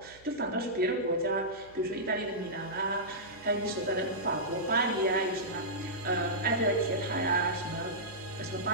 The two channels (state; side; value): noise; right; hum, 25 dB below the sound